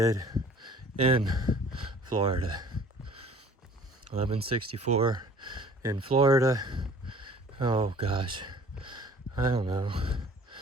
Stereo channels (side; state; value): both; normal; correlation 0.51